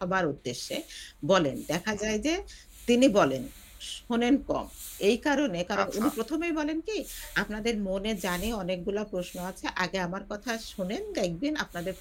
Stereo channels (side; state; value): both; identical; correlation 1.00